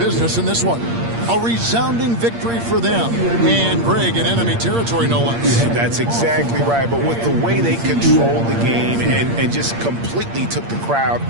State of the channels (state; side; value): late; left; 8.6 ms